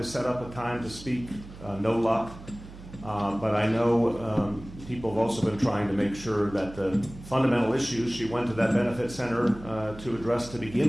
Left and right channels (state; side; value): noise; right; hum, 16 dB below the sound